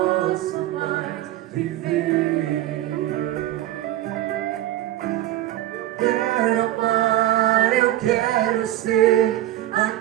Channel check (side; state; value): left; quieter; 14.0 dB